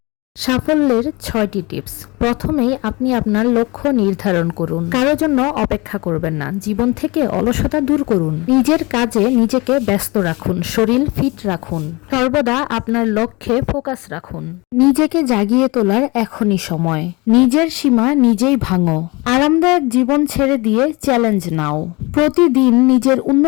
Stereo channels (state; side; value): quieter; right; 25.1 dB